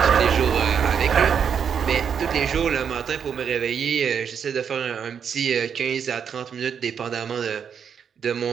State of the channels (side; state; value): left; quieter; 7.4 dB